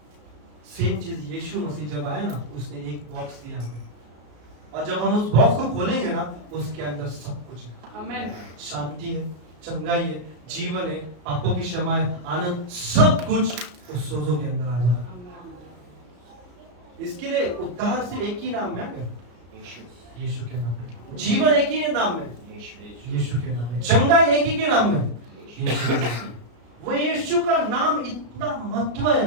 सेम चीज यीशु मसीह जब आया ना, उसने एक बॉक्स दिया हमें, और जब हम उस बॉक्स को खोलेंगे ना, उसके अंदर सब कुछ है। आमीन। शांति है, चंगाई है, जीवन है, पापों की क्षमा है, आनंद, सब कुछ उस सोजो के अंदर आ जाता है। इसके लिए उद्धार सिर्फ एक ही नाम में है, यीशु के नाम में। जीवन एक ही नाम में, यीशु के नाम में। चंगाई एक ही के नाम में, यीशु के नाम में। वो यीशु का नाम इतना महत्व है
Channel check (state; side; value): late; left; 34 ms